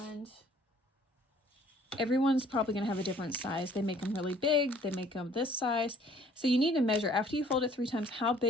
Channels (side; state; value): both; normal; correlation 0.57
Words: everyone's probably going to have a different size. They make them really big. They make them this size. So you need to measure after you fold it 3 times, how